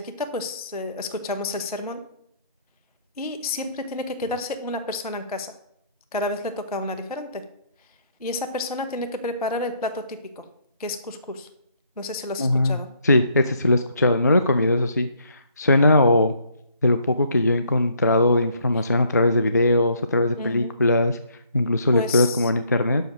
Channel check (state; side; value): inverted; both; correlation -0.67